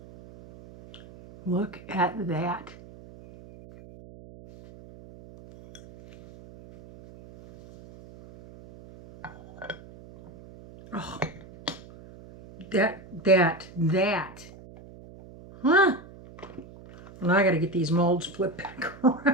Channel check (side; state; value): right; noise; hum, 19 dB below the sound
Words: Look at that. Oh, that. Huh? Well, now I got to get these molds flipped back